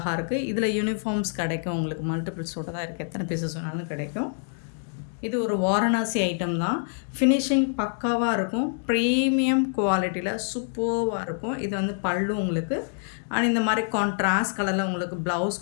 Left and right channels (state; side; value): silent; right; digital silence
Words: இருக்குது. இதில் யூனிஃபார்ம்ஸ் கிடைக்கும். உங்களுக்கு மல்டிபிள்ஸோட தான் இருக்குது. எத்தனை பீசஸ் வேணாலும் கிடைக்கும். இது ஒரு வாரணாசி ஐட்டம் தான். ஃபினிஷிங் பக்காவாக இருக்கும். ப்ரீமியம் குவாலிட்டியில் சூப்பராக இருக்கும். இது வந்து பல்லு உங்களுக்கு. அண்ட் இந்த மாதிரி கான்ட்ராஸ்ட் கலரில் உங்களுக்கு